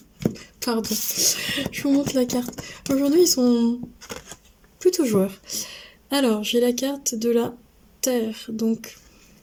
Pardon. Je vous montre la carte. Aujourd'hui ils sont plutôt joueurs. Alors j'ai la carte de la Terre. Donc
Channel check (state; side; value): identical; both; correlation 1.00